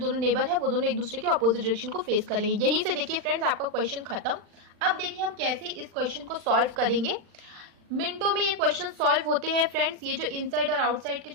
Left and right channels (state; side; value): late; left; 40 ms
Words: नेबर है वो दोनों एक दूसरे के ऑपोजिट डायरेक्शन को फेस करेंगे. यहीं से देखिए फ्रेंड्स आपका क्वेश्चन खत्म. अब देखिए हम कैसे इस क्वेश्चन को सॉल्व करेंगे. मिनटों में ये क्वेश्चन सॉल्व होते हैं फ्रेंड्स. ये जो इनसाइड और आउटसाइड के